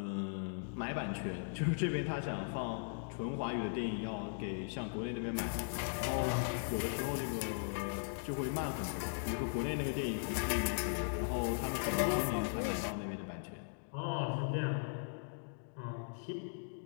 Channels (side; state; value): right; silent; digital silence